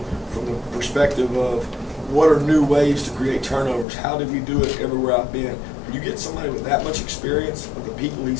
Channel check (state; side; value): drops out; right; at 3.9 s